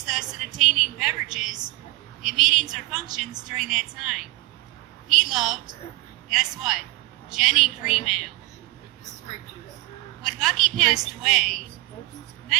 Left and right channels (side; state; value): left; quieter; 22.9 dB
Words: us in obtaining beverages in meetings or functions during that time. He loved, guess what? Jenny Cream Ale. When Bucky passed away,